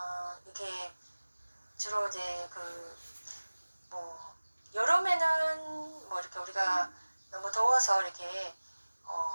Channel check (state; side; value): inverted; both; correlation -1.00